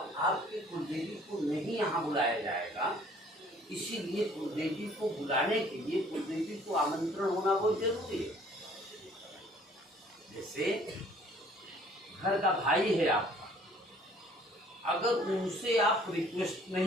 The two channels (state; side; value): normal; both; correlation 0.56